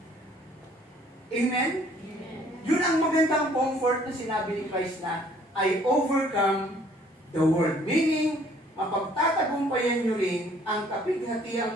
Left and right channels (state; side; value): normal; both; correlation 0.59